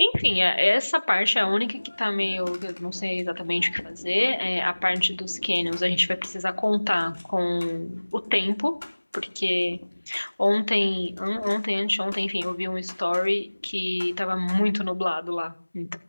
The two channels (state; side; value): inverted; both; correlation -1.00